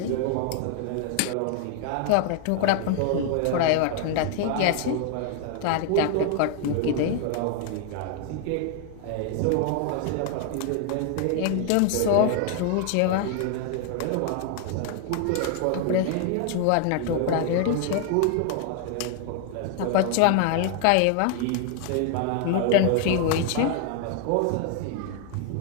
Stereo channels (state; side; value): different; both; correlation 0.00